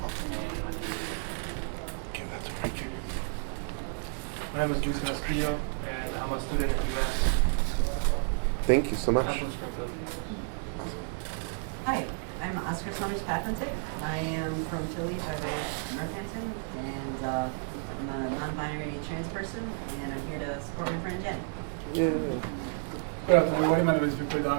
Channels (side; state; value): left; silent; 57 dB below the other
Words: here. Give that to Rican. My name is Luis Castillo, and I'm a student at UMass. Thank you so much. I'm from Springfield. Hi, I'm Oscar Summers Papentic. I am from Philly by way of Northampton, and I'm a non-binary trans person, and I'm here to support my friend Jen. Yeah. Good afternoon, everybody. My name is Victor